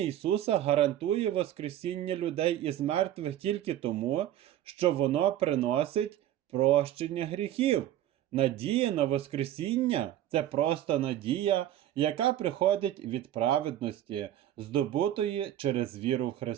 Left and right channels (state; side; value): quieter; left; 12.3 dB